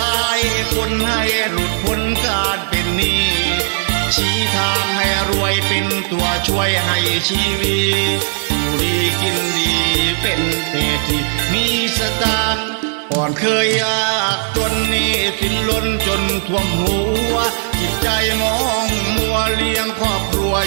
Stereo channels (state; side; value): silent; left; 68 dB below the other